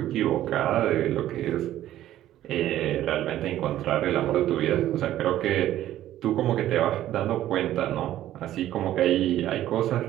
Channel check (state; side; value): quieter; left; 13.1 dB